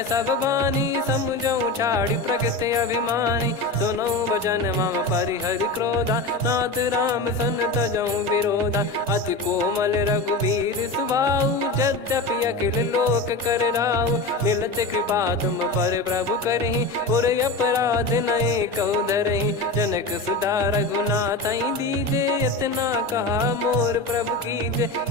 सब बानी, समझऊ छाड़ी प्रगति अभिमानी। सुनऊ भजन मम परिहरि क्रोधा, नाथ राम सन तजऊ विरोधा। अति कोमल रघुवीर सुभाऊ, यद्यपि अखिल लोक कर राऊ। मिलत कृपा तुम पर प्रभु करहि, पुर अपराध नए कऊ धरहि। जनक सुधा रघुनाथ दीजे, इतना कहा मोर प्रभु कीजे।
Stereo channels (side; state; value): right; quieter; 3.0 dB